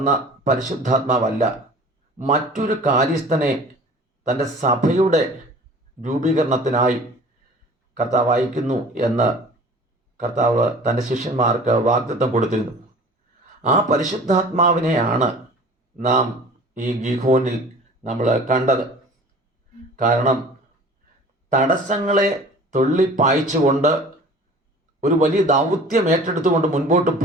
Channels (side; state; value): both; normal; correlation 0.44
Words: പരിശുദ്ധാത്മാവല്ല, മറ്റൊരു കാര്യസ്ഥനെ തൻ്റെ സഭയുടെ രൂപീകരണത്തിനായി കർത്താവ് അയക്കുന്നു എന്ന് കർത്താവ് തൻ്റെ ശിഷ്യന്മാർക്ക് വാഗ്ദത്തം കൊടുത്തിരുന്നു. ആ പരിശുദ്ധാത്മാവിനെയാണ് നാം ഈ ഗീഹോനിൽ നമ്മൾ കണ്ടത്. കാരണം തടസ്സങ്ങളെ തള്ളിപ്പായിച്ചുകൊണ്ട് ഒരു വലിയ ദൗത്യം ഏറ്റെടുത്തുകൊണ്ട് മുൻപോട്ട്